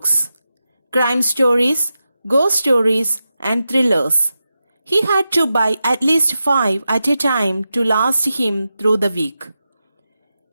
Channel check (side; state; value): both; inverted; correlation -0.91